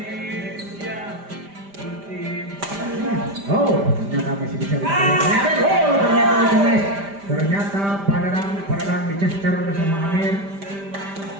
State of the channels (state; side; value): late; left; 5.1 ms